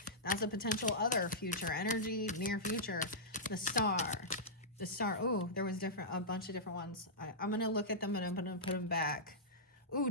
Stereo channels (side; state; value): both; normal; correlation -0.12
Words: that's a potential other future energy, near future. The Star. The Star. Oh, there was a bunch of different ones. I'm going to look at them and I'm going to put them back. Ooh,